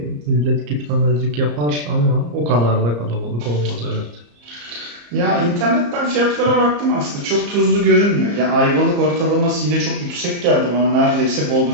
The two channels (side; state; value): left; late; 34 ms